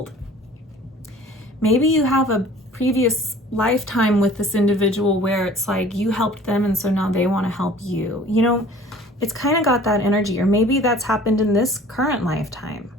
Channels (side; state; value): both; normal; correlation 0.48